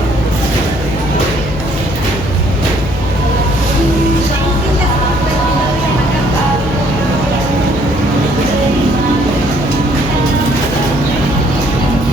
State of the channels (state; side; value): noise; left; hum, 9 dB below the sound